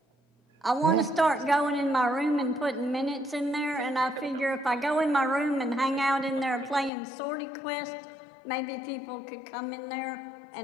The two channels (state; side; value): drops out; right; at 6.9 s